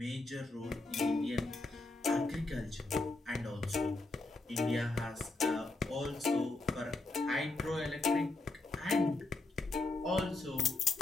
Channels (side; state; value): right; quieter; 3.1 dB